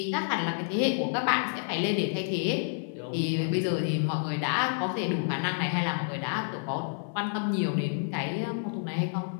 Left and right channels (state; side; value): silent; right; 57 dB below the other